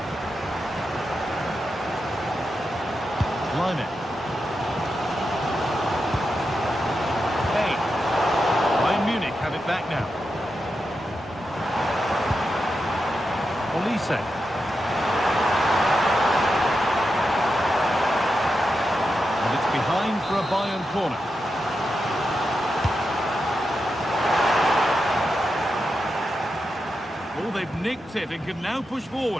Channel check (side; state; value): both; normal; correlation 0.88